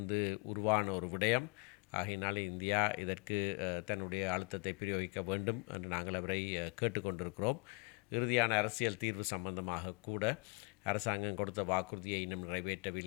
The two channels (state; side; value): quieter; right; 29.8 dB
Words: உருவான ஒரு விடயம். ஆகையினாலே இந்தியா இதற்கு தன்னுடைய அழுத்தத்தை பிரயோகிக்க வேண்டும் என்று நாங்கள் அவரை கேட்டுக்கொண்டிருக்கிறோம். இறுதியான அரசியல் தீர்வு சம்பந்தமாக கூட அரசாங்கம் கொடுத்த வாக்குறுதியை இன்னும்